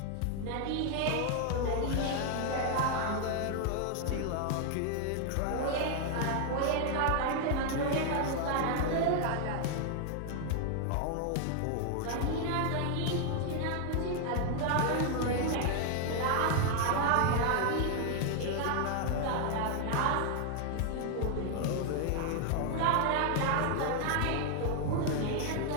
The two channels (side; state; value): both; different; correlation 0.00